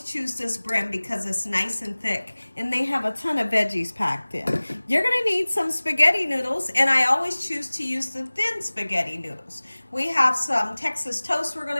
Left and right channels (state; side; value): inverted; both; correlation -1.00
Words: choose this brand because it's nice and thick and they have a ton of veggies packed in. You're going to need some spaghetti noodles, and I always choose to use the thin spaghetti noodles. We have some Texas toast we're going